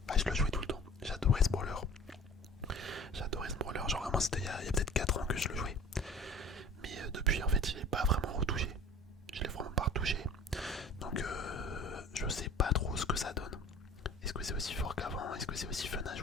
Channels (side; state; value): both; normal; correlation 0.44